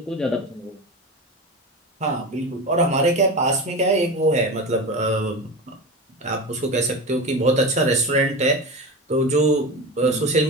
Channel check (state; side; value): normal; both; correlation 0.26